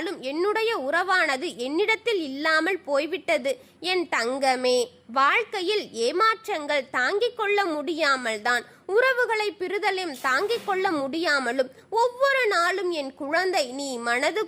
என்னுடைய உறவானது என்னிடத்தில் இல்லாமல் போய்விட்டது என் தங்கமே. வாழ்க்கையில் ஏமாற்றங்கள் தாங்கிக் கொள்ள முடியாமல் தான் உறவுகளை பிரிதலும் தாங்கிக் கொள்ள முடியாமலும் ஒவ்வொரு நாளும் என் குழந்தை நீ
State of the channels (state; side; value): identical; both; correlation 1.00